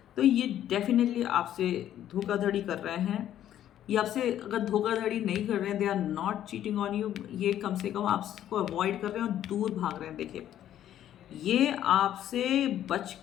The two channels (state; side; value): quieter; right; 11.4 dB